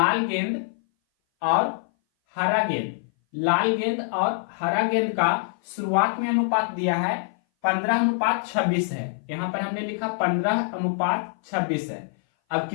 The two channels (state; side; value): silent; right; 58 dB below the other